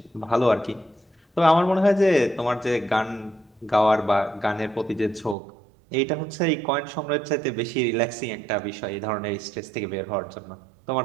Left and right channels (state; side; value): drops out; left; at 5.4 s